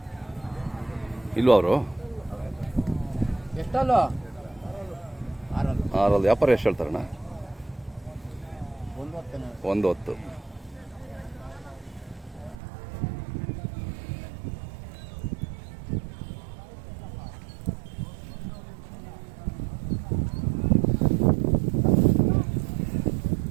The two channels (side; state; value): left; drops out; at 12.6 s